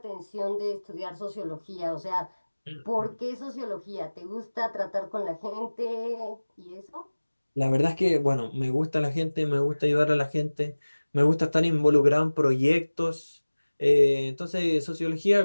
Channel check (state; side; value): inverted; both; correlation -1.00